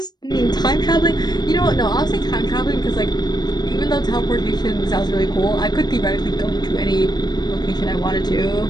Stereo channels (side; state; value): right; late; 0.20 ms